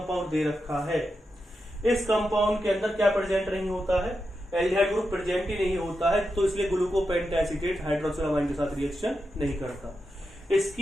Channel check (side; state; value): both; normal; correlation 0.88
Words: दे रखा है, इस कंपाउंड के अंदर क्या प्रेजेंट नहीं होता है, एल्डिहाइड ग्रुप प्रेजेंट ही नहीं होता है, तो इसलिए ग्लूकोपेंटाएसीटेट हाइड्रोक्सिल अमाइन के साथ रिएक्शन नहीं करता।